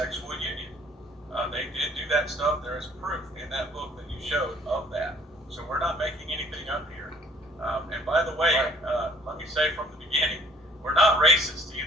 union. They did do that stuff. There is proof in that book that you showed of that. So we're not making anything up here. And by the way, let me say from the beginning, we're not racist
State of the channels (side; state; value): both; normal; correlation 0.58